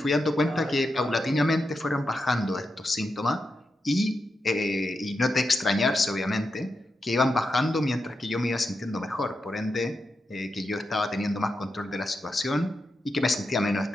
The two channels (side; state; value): both; normal; correlation 0.87